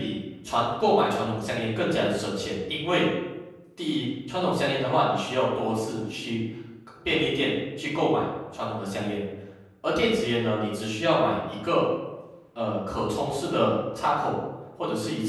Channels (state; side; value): identical; both; correlation 1.00